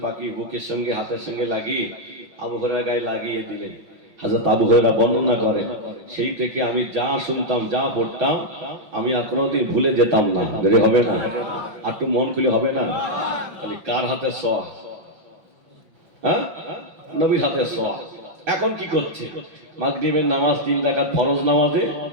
পাকিয়ে বুকের সঙ্গে হাতের সঙ্গে লাগিয়ে আবু হুরায়রা গায়ে লাগিয়ে দিলেন। হযরত আবু হুরায়রা বর্ণনা করেন, সেই থেকে আমি যা শুনতাম, যা পড়তাম, আমি আর কোনোদিন ভুলে যেতাম না। বেরে হবে না? আর একটু মন খুলে হবে না? খালি কার হাতে সোয়া? হ্যাঁ, নবীর হাতে সোয়া। এখন কি করছে? মাগরিবের নামাজ 3 রাকাত ফরজ নামাজে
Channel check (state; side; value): late; left; 5.7 ms